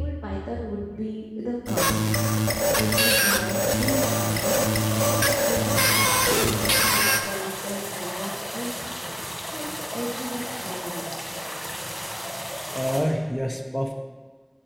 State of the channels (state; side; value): identical; both; correlation 1.00